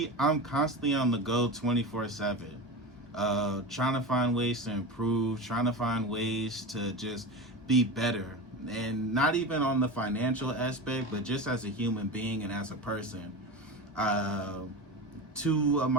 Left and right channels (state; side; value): normal; both; correlation 0.25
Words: I'm constantly on the go 24/7, trying to find ways to improve, trying to find ways to just be better. And not even on the financial aspect, but just as a human being and as a person. Two of